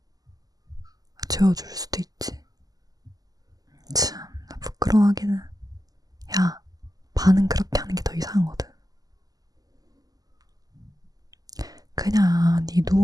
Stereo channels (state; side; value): late; left; 0.18 ms